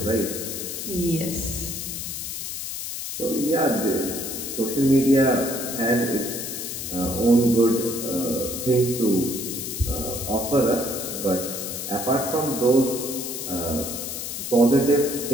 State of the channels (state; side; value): noise; left; hiss, 6 dB below the sound